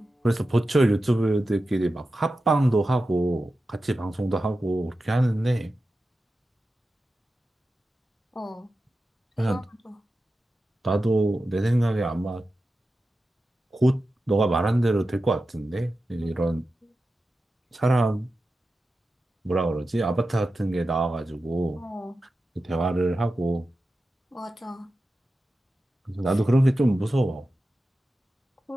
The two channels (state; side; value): normal; both; correlation 0.92